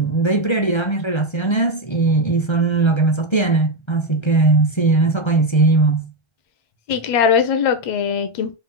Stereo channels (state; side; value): late; right; 1.3 ms